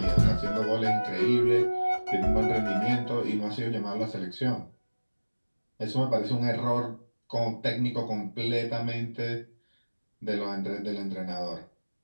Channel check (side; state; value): both; inverted; correlation -1.00